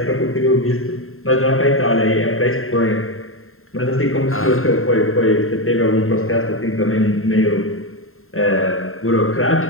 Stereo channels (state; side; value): late; right; 0.61 ms